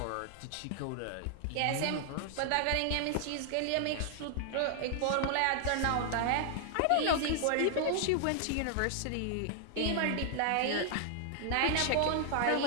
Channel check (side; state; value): both; different; correlation 0.00